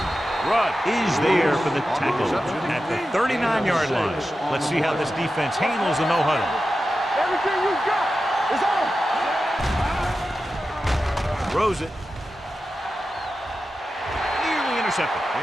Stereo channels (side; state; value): both; normal; correlation 0.92